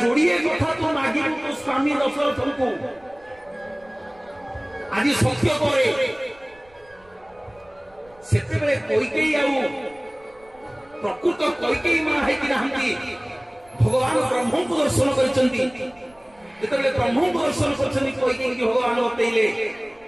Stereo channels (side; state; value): right; noise; rumble, 29 dB below the sound